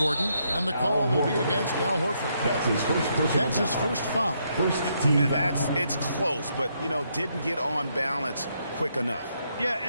and the call will be against Al Horford. That's his first foul. It's close, but, didn't get on balance quick enough. Yeah,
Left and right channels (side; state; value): both; inverted; correlation -0.76